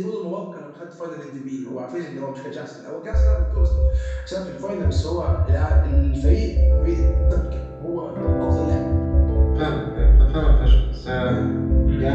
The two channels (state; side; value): identical; both; correlation 1.00